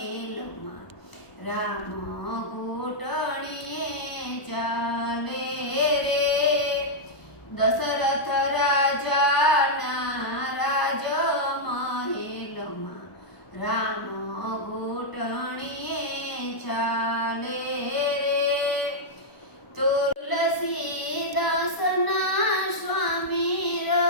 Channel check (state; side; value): late; right; 1.0 ms